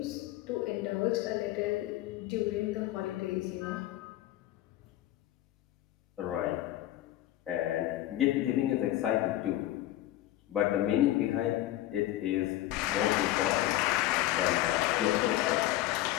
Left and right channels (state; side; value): quieter; right; 14.8 dB